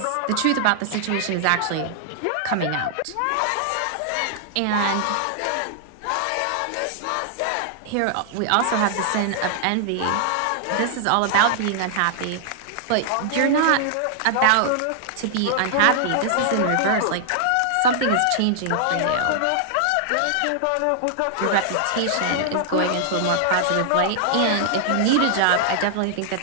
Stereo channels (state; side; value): different; both; correlation -0.01